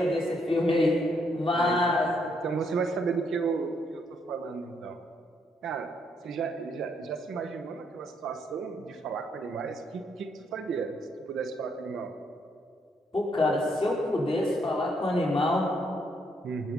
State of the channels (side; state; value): both; normal; correlation 0.73